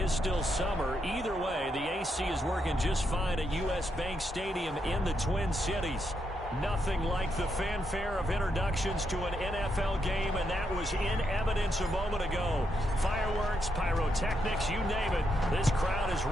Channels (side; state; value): both; normal; correlation 0.80